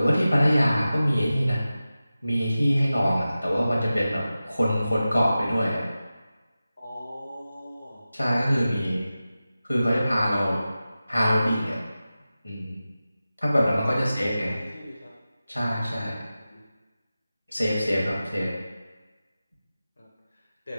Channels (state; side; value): inverted; both; correlation -0.95